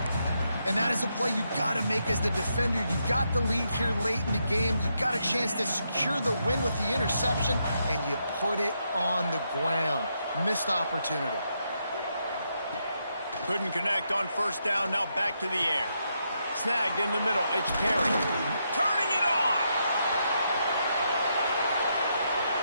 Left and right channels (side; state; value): both; inverted; correlation -0.80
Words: And that is a play you've got to make as the defender. You've got the lead here late in the game. You've got a chance to secure the win with the interception, and you put it on the ground. Missed opportunity. Couldn't connect on first down, now back to the air. Snagged in the middle, it's Perry. Turning it on!